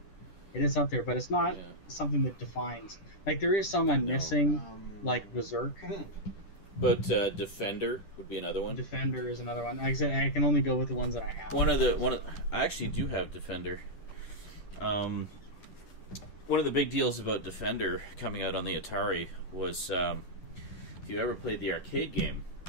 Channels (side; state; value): right; late; 10 ms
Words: It is up there, but it's not something that defines. Like, there is some I'm missing, like Berserk. But Defender would be another one. Defender is another one. Like I said, I can only go with the ones that I have. I actually do have Defender. One of the big deals about Defender coming out on the Atari was if you ever played the arcade game